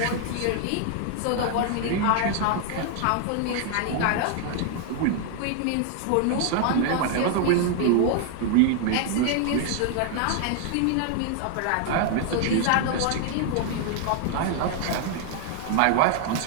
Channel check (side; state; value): both; different; correlation 0.00